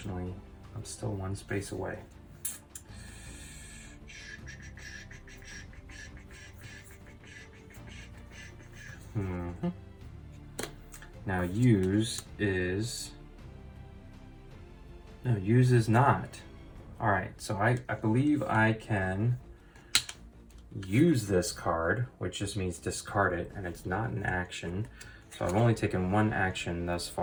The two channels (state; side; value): identical; both; correlation 1.00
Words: I'm still 1 space away. Now use is not. All right, so I believe I can use this card, which just means discard it, and it's not an action. So I've only taken 1 action thus